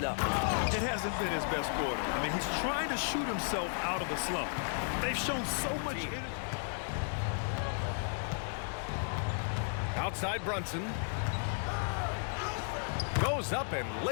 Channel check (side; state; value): right; silent; 55 dB below the other